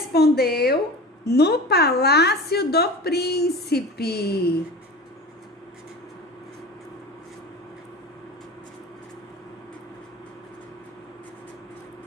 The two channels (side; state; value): both; normal; correlation 0.34